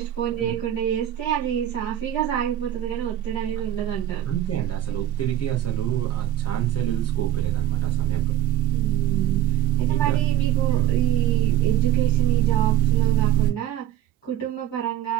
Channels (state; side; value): quieter; left; 11.8 dB